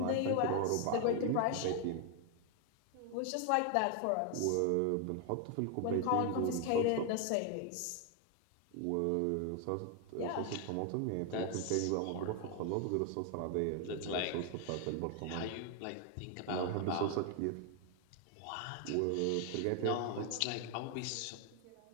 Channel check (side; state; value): both; different; correlation 0.00